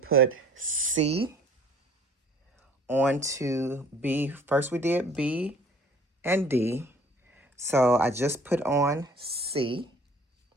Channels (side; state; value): both; normal; correlation 0.53